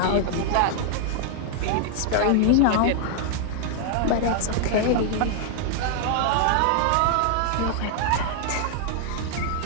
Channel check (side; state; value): both; different; correlation 0.00